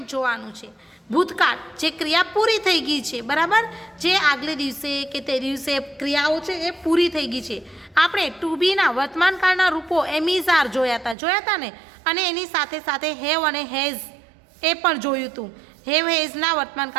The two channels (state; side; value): drops out; left; at 11.2 s